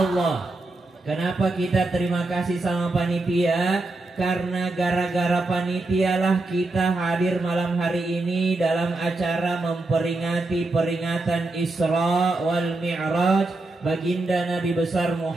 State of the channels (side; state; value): left; quieter; 3.0 dB